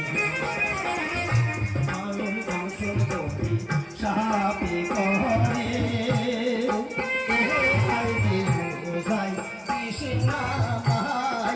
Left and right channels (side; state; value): both; identical; correlation 1.00